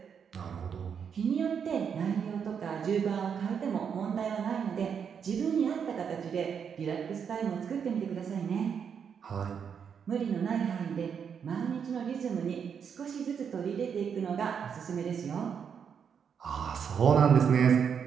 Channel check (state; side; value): quieter; left; 7.2 dB